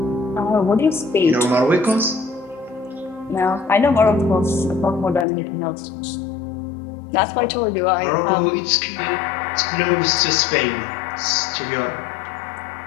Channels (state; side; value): drops out; right; at 5.2 s